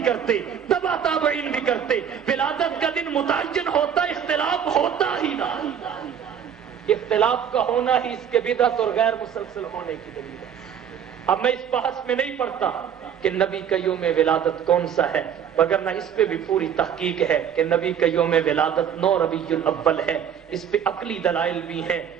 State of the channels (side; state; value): left; quieter; 8.5 dB